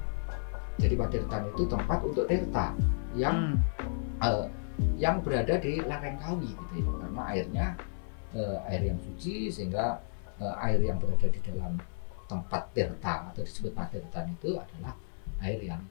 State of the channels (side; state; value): right; silent; 56 dB below the other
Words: Jadi patirtan itu tempat untuk tirta yang berada di lereng Kawi gitu ya. Karena airnya air yang suci, sehingga air yang berada di dalam tempat tirta atau disebut patirtan itu adalah air yang